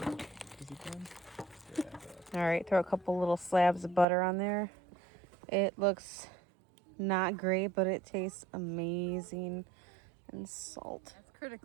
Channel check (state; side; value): drops out; left; at 4.0 s